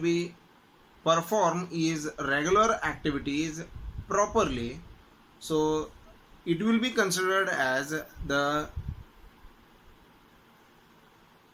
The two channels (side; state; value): both; identical; correlation 1.00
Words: perform his regular activities properly, so it will be considered as the